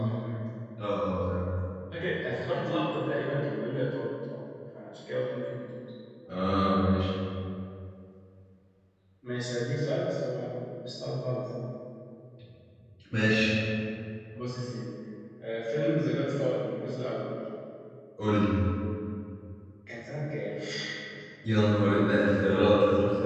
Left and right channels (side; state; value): both; identical; correlation 1.00